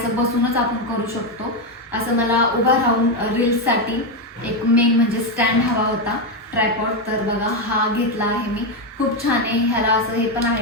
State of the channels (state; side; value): normal; both; correlation 0.07